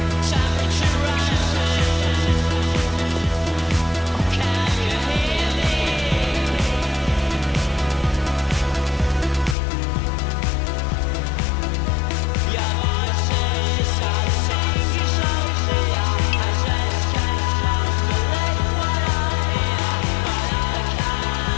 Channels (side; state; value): right; drops out; at 9.6 s